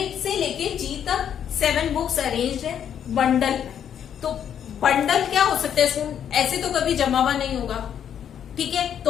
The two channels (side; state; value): right; quieter; 9.0 dB